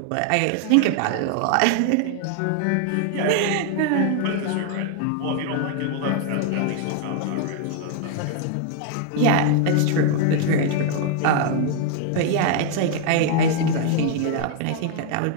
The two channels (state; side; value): different; both; correlation 0.00